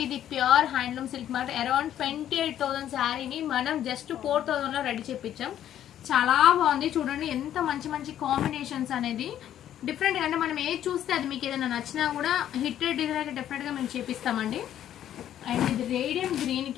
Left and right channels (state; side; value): quieter; right; 11.1 dB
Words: ఇది ప్యూర్ హ్యాండ్లూమ్ సిల్క్ మాట. అరౌండ్ 28,000 శారీని మనం జస్ట్ 4,000 లో రెడీ చేపించాం. చాలా బాగుంది చూడండి, ఎంత మంచి మంచి కాంబినేషన్స్ అనేది డిఫరెంట్. అంటే మనం ఏది చూస్తే అది మీకు ఏదైనా నచ్చినా కూడా హిట్టెడ్ డిజైన్ అయితే డెఫినెట్ గా మేము చేపిస్తామండి. అండ్ ఇది రేడియం గ్రీన్